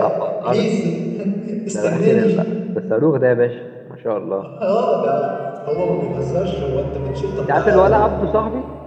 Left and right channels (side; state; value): both; identical; correlation 1.00